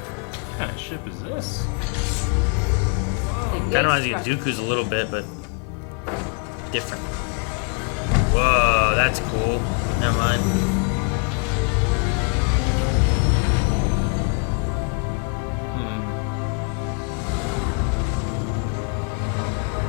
kind of ship is this? Kind of reminds me of Dooku's a little bit, but different. Whoa, that's cool. Never mind.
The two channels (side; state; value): right; quieter; 36.0 dB